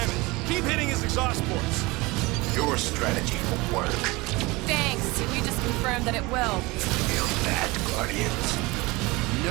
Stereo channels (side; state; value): left; quieter; 23.1 dB